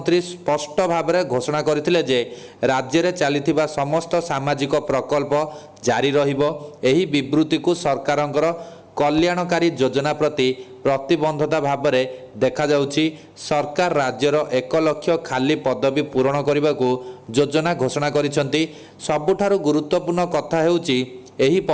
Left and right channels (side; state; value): both; identical; correlation 1.00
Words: ସ୍ପଷ୍ଟ ଭାବରେ ଘୋଷଣା କରିଥିଲେ ଯେ ରାଜ୍ୟରେ ଚାଲିଥିବା ସମସ୍ତ ସାମାଜିକ ପ୍ରକଳ୍ପ ଜାରି ରହିବ। ଏହି ବିବୃତ୍ତିକୁ ସରକାରଙ୍କର କଲ୍ୟାଣକାରୀ ଯୋଜନା ପ୍ରତି ପ୍ରତିବଦ୍ଧତା ଭାବରେ ଦେଖାଯାଉଛି। ସରକାର ରାଜ୍ୟର 1 ଲକ୍ଷ ଖାଲି ପଦବୀ ପୂରଣ କରିବାକୁ ଯୋଜନା ଘୋଷଣା କରିଛନ୍ତି। ସବୁଠାରୁ ଗୁରୁତ୍ୱପୂର୍ଣ୍ଣ କଥା ହେଉଛି ଏହି